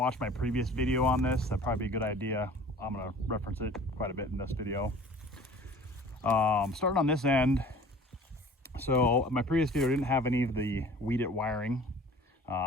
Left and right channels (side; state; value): both; normal; correlation 0.46